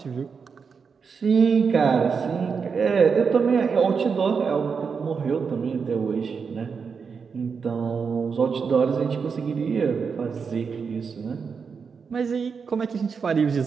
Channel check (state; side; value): quieter; left; 5.7 dB